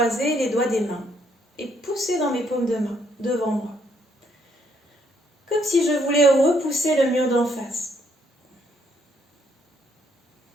les doigts des mains et pousser dans mes paumes de main, devant moi. Comme si je voulais repousser le mur d'en face.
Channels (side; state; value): both; normal; correlation 0.70